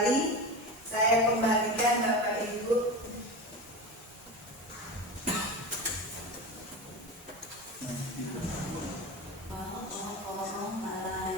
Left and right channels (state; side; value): normal; both; correlation 0.26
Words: Saya kembalikan Bapak Ibu.